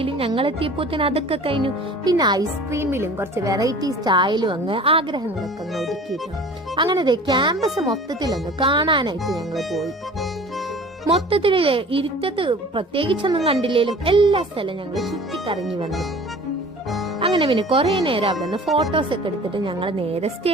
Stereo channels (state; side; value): normal; both; correlation 0.44